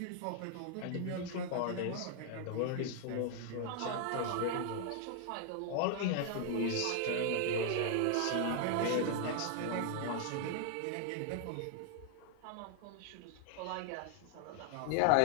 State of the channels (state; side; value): different; both; correlation 0.00